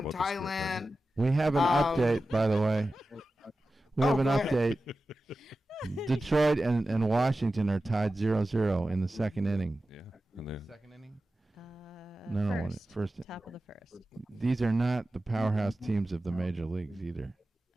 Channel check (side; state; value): both; normal; correlation 0.94